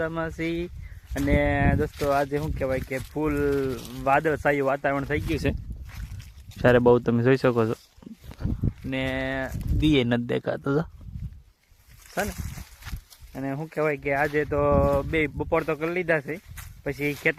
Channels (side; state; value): both; identical; correlation 1.00